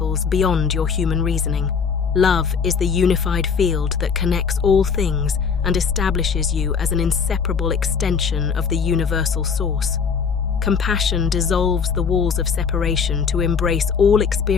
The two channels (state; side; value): quieter; right; 6.1 dB